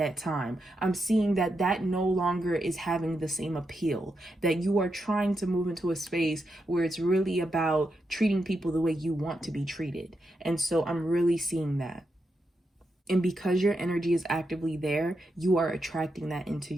time. I'm seeing that that no longer is having the same appeal, that you are trying to move into a space where it's really about treating people the way you want to be treated. And so I'm really seeing that. And because your energy is actively there, you are attracting that into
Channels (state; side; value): normal; both; correlation 0.85